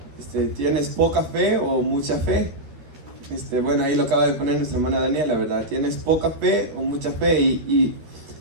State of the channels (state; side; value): late; left; 13 ms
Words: ¿tienes poca fe o mucha fe? Bueno, ahí lo acaba de poner nuestra hermana Daniela, ¿verdad? ¿Tienes poca fe o mucha fe? Y